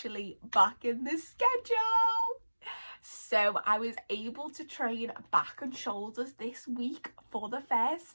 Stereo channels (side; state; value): both; inverted; correlation -1.00